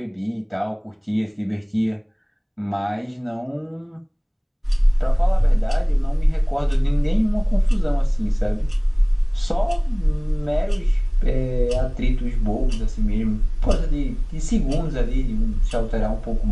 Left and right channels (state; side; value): identical; both; correlation 1.00